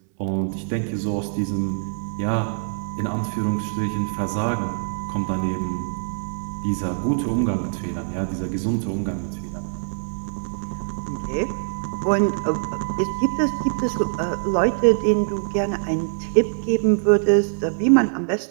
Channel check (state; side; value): silent; left; 63 dB below the other